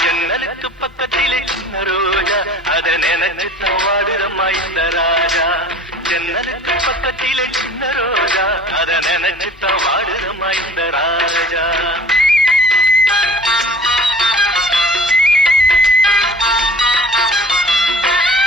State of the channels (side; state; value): both; normal; correlation 0.46